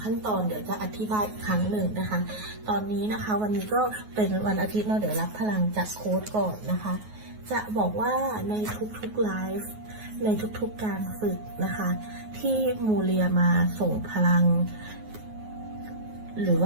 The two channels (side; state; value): left; late; 9.4 ms